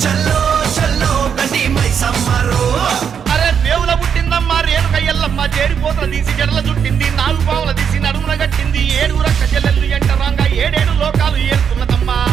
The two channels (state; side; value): quieter; left; 7.5 dB